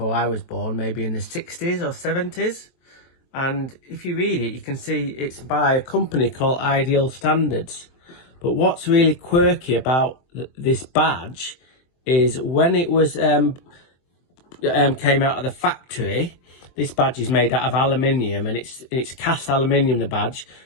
I was born, maybe in the 60s or 70s. And if you read it, you can see it's by a company called Ideal Standards. But what's really quirky about this badge is when it was came out of the factory, this badge is made out of aluminium, and it's cast aluminium, the badge,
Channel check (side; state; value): right; late; 23 ms